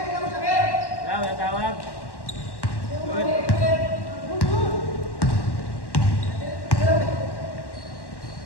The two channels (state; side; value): late; right; 1.1 ms